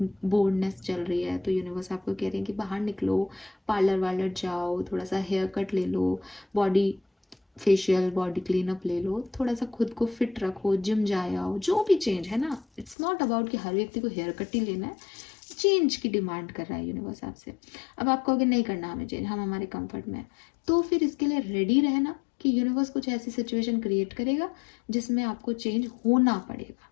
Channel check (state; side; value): drops out; right; at 13.0 s